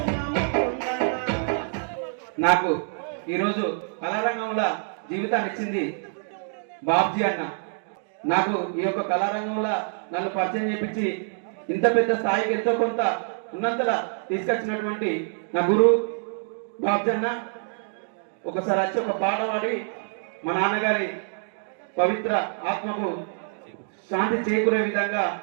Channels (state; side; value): silent; left; digital silence